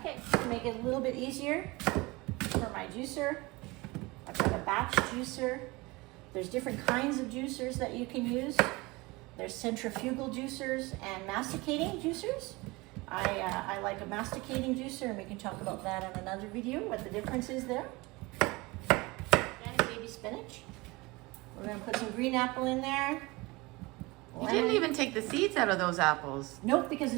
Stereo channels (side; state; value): left; quieter; 23.3 dB